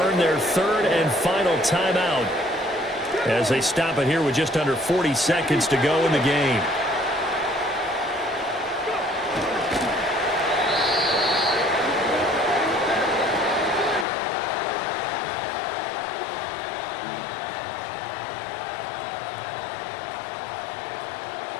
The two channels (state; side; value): drops out; right; at 14.1 s